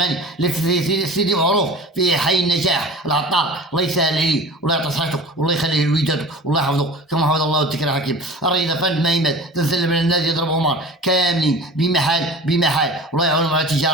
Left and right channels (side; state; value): both; normal; correlation 0.38